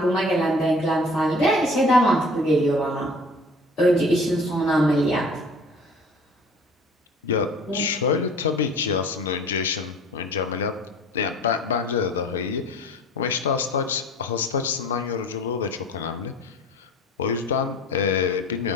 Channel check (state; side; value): normal; both; correlation 0.45